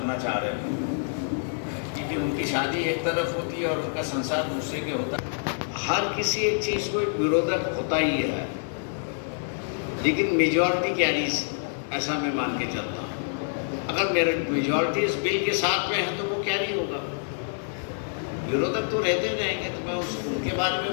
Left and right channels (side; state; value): right; silent; digital silence